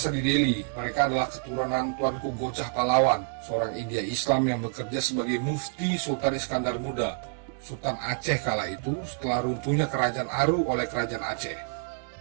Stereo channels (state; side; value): silent; left; digital silence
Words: di Deli, mereka adalah keturunan Tuanku Gocah Pahlawan, seorang India Islam yang bekerja sebagai mufti Sultan Iskandar Muda, Sultan Aceh kala itu setelah runtuhnya Kerajaan Aru oleh Kerajaan Aceh.